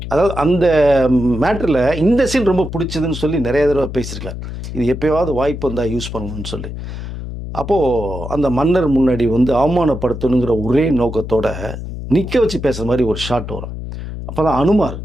அதாவது அந்த மேட்டரில் இந்த சீன் ரொம்ப பிடிச்சதுன்னு சொல்லி நிறைய தடவை பேசியிருக்கார். இது எப்போயாவது வாய்ப்பு வந்தால் யூஸ் பண்ணணும்னு சொல்லி. அப்போது அந்த மன்னர் முன்னாடி வந்து அவமானப்படுத்தணுங்கிற ஒரே நோக்கத்தோட நிற்க வச்சு பேசுகிற மாதிரி ஒரு ஷாட் வரும். அப்போ தான் அனுமார்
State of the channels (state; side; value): noise; left; hum, 8 dB below the sound